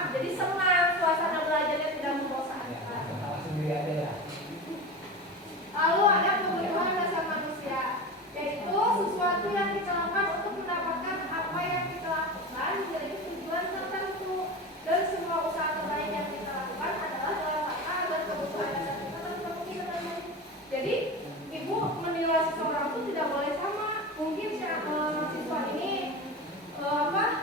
jadi senang, suasana belajarnya tidak membosankan. Lalu ada kebutuhan dasar manusia, yaitu sesuatu yang kita lakukan untuk mendapatkan apa yang kita lakukan menjadi tujuan tertentu. Dan semua usaha terbaik yang kita lakukan adalah dalam rangka agar kebutuhan dasar kita terpenuhi dengan baik. Jadi ibu menilai seseorang itu tidak boleh sama. Mungkin siswa ini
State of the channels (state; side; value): normal; both; correlation 0.27